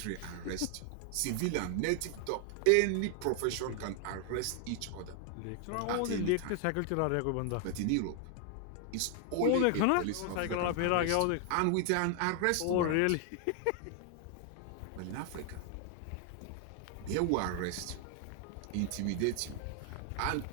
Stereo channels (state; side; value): different; both; correlation 0.00